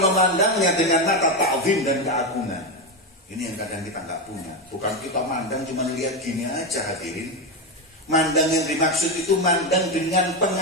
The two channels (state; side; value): normal; both; correlation 0.11